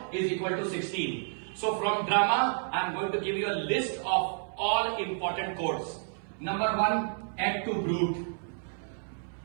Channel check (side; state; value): left; silent; 56 dB below the other